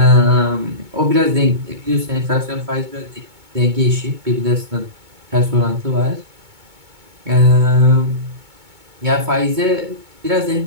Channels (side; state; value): left; late; 2.2 ms